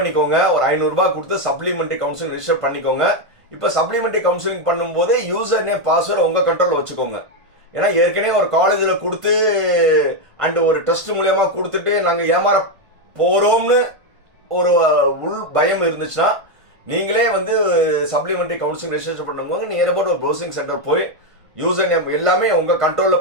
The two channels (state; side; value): late; left; 1.5 ms